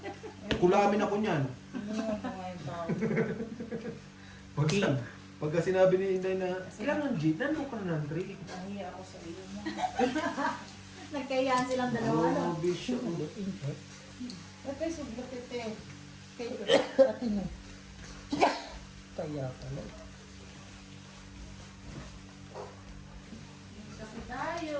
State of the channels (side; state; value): both; identical; correlation 1.00